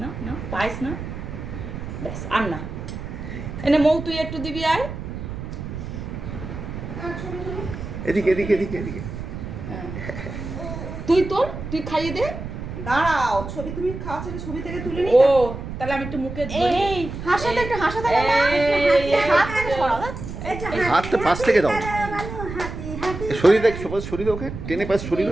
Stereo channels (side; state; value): right; noise; rumble, 8 dB below the sound